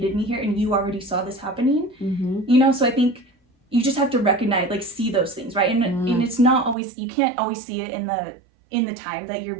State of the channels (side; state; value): left; drops out; at 6.8 s